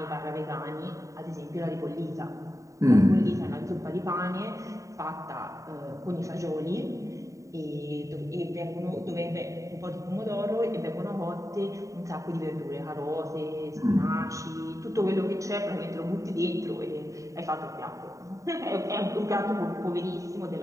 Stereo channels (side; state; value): left; late; 0.16 ms